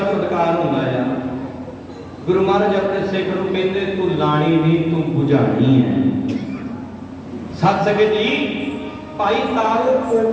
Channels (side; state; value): both; identical; correlation 1.00